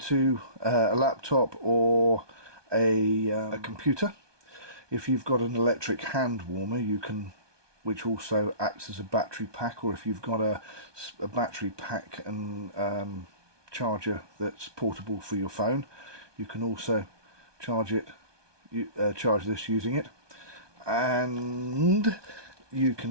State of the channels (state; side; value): late; left; 1.2 ms